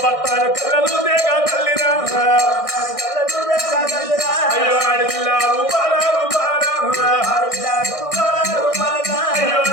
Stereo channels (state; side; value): late; right; 1.6 ms